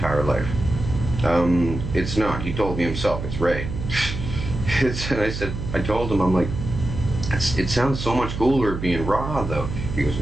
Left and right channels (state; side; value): noise; right; hum, 6 dB below the sound